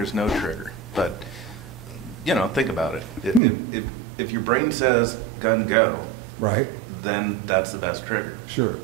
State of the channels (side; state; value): left; drops out; at 3.4 s